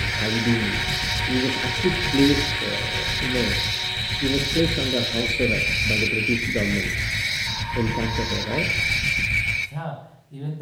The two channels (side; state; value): both; identical; correlation 1.00